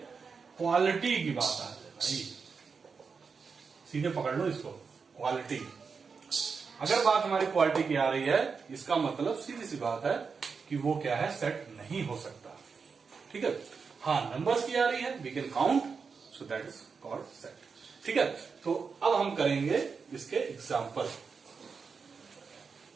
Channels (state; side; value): quieter; left; 5.3 dB